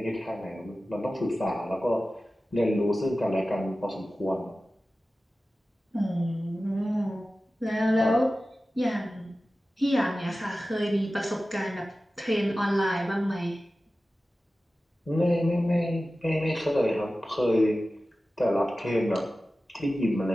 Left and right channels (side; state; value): both; normal; correlation 0.95